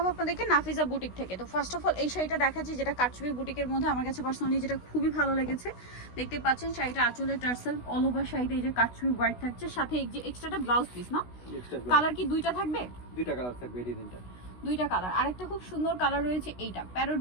আপনাদেরকে নাফিজা বুটিক থেকে। তো ফার্স্ট অফ অল এই শাড়িটা দেখাচ্ছি, যেটা কারচুপি বুটিকের মধ্যে আমার কাছে পার্সোনালি যেটা খুবই ভালো লেগেছে। দেখতে পাচ্ছেন শাড়িটা আঁচলের টার্সেল, অল ওভার শাড়িতে এই যে কারচুপি ওয়ার্ক থাকছে, সাথে এই যে এক্সট্রাটা ব্লাউজ পিস না। কালার কি দুইটা থাকবে? দুইটা কালার থাকবে, এই তিনটা দুইটা কালার। আরেকটা খুব সুন্দর কালার রয়েছে, এইটা প্যারট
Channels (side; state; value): right; late; 16 ms